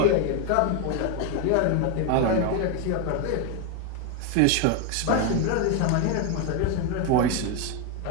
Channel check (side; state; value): both; different; correlation 0.01